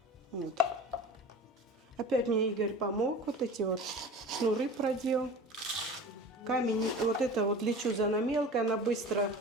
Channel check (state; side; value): normal; both; correlation 0.37